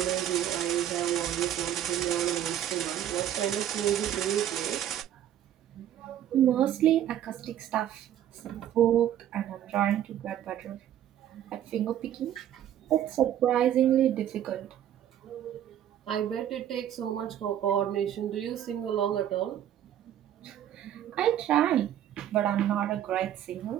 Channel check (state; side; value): quieter; left; 11.0 dB